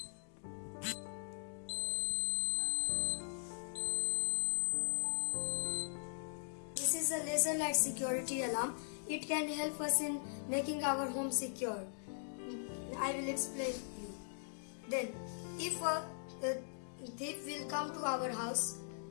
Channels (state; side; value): silent; right; digital silence